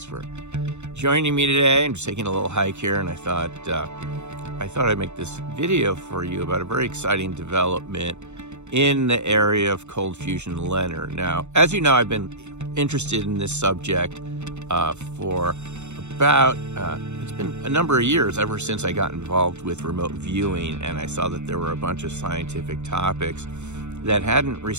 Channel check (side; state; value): left; late; 0.83 ms